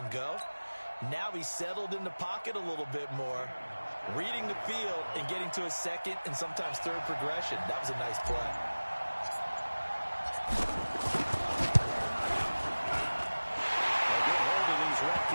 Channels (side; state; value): both; inverted; correlation -1.00